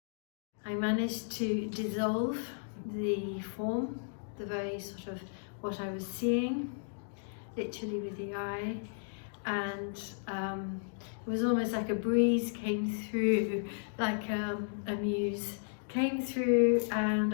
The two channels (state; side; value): silent; right; digital silence